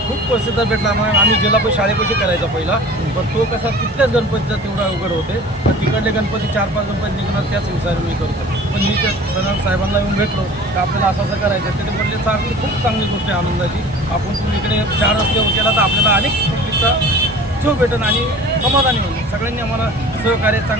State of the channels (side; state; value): both; normal; correlation 0.43